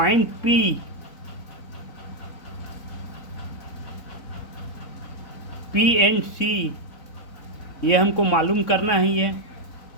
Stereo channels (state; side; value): late; right; 4.0 ms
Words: P and C, ये हमको मालूम करना ही है।